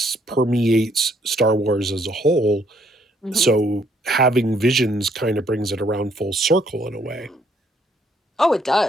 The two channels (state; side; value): normal; both; correlation 0.67